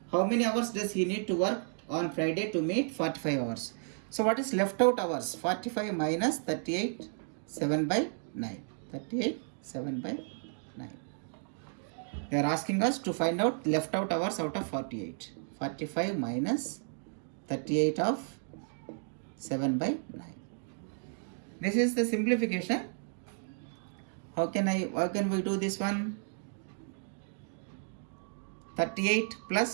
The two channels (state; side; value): silent; left; 56 dB below the other